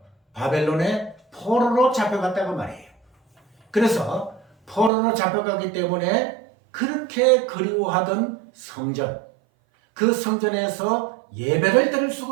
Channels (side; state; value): left; drops out; at 4.9 s